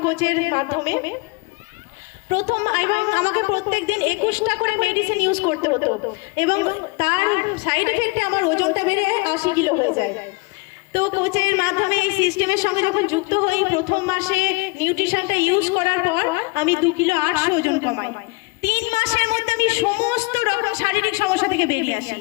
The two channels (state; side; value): quieter; right; 27.3 dB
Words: কোচের মাধ্যমে। প্রথম এবং আমাকে প্রত্যেক দিন 21টা করে মেডিসিন ইউজ করতে হতো, এবং তার সাইড এফেক্টে আমার ওজনটা বেড়ে 80 কিলো হয়ে যায়। তো কোচের মাধ্যমে এই সিস্টেমের সঙ্গে যখন যুক্ত হই, প্রথম মাসে নিউট্রিশনটা ইউজ করার পর আমি 2 কিলো 800 ওজন কমাই। 3 মাসের মধ্যে আমি সমস্ত রকম শারীরিক সমস্যা থেকে বেরিয়ে আসি।